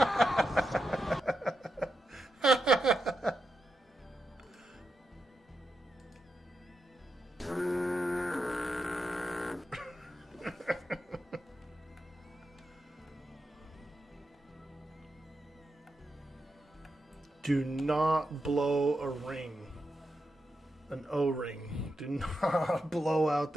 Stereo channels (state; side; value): normal; both; correlation 0.87